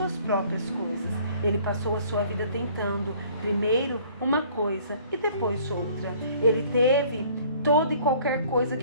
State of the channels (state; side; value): inverted; both; correlation -0.55